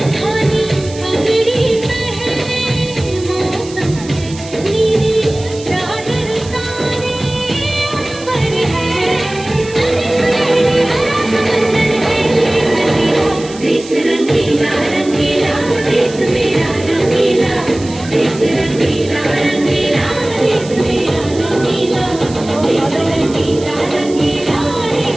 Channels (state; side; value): noise; right; hiss, 17 dB below the sound